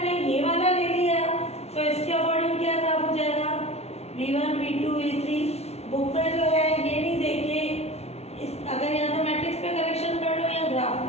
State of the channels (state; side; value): late; right; 0.31 ms